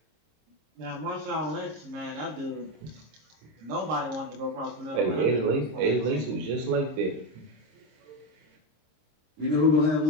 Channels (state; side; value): late; left; 26 ms